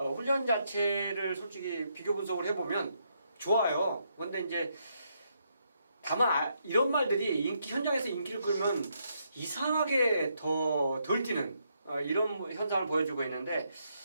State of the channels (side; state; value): both; inverted; correlation -0.77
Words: 자체를 솔직히 비교 분석을 해보면 좋아요. 그런데 이제 다만 이런 말들이 현장에서 인기를 끌면 이상하게 더 덜 뛰는 이런 현상을 보여주고 있는데